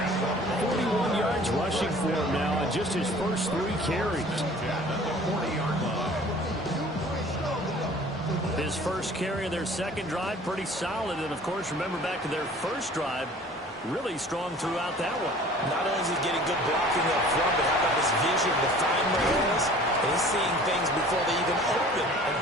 41 yards rushing for him now on just his first 3 carries. His first carry of their second drive, pretty solid. And, of course, remember back to their first drive, really strong throughout that one. Not only is he getting good blocking up front, but how about his vision to find the holes? And he's seeing things before they even open and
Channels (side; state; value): both; normal; correlation 0.48